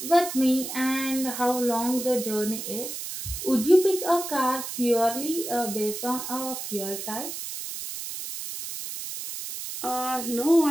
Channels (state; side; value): noise; right; hiss, 7 dB below the sound